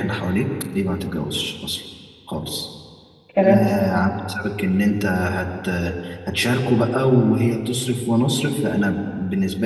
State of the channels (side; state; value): both; identical; correlation 1.00